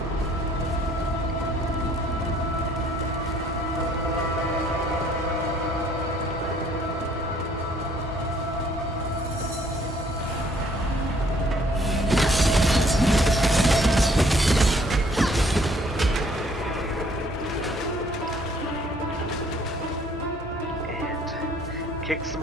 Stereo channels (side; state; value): both; normal; correlation 0.61